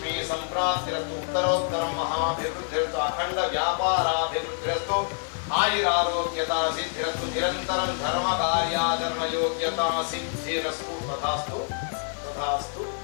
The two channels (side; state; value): right; silent; 60 dB below the other